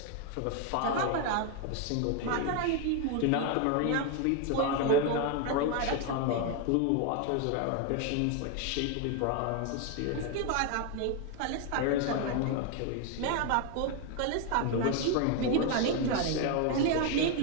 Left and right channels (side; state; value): both; different; correlation 0.01